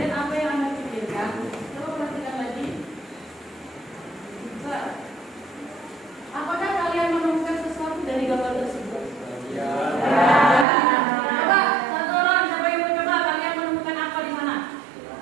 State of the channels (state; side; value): drops out; left; at 10.7 s